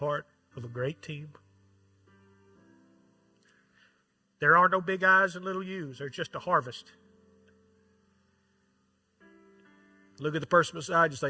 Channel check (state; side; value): identical; both; correlation 1.00